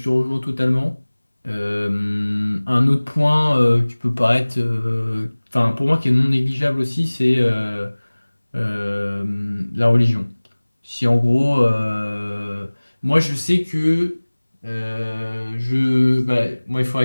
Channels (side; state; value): both; inverted; correlation -1.00